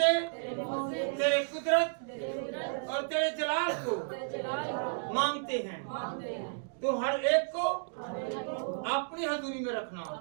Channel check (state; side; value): silent; left; digital silence